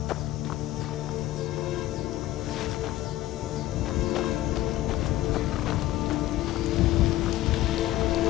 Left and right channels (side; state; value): right; quieter; 15.2 dB